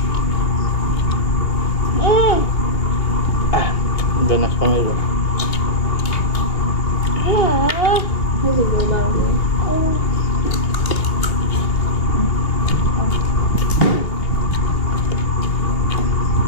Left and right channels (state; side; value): late; right; 2.9 ms